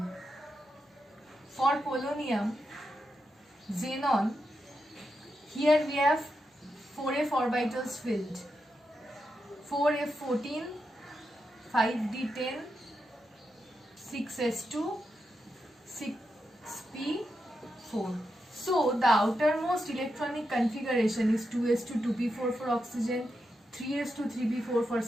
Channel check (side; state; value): both; normal; correlation 0.86